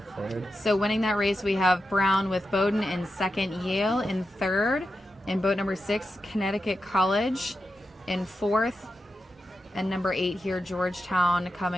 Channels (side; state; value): both; normal; correlation 0.89